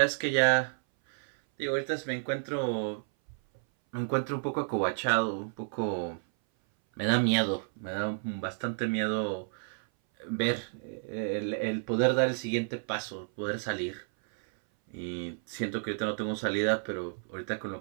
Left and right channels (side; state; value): left; silent; 57 dB below the other